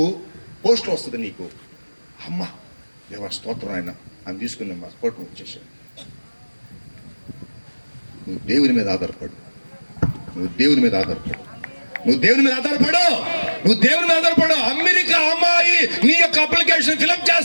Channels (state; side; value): inverted; both; correlation -1.00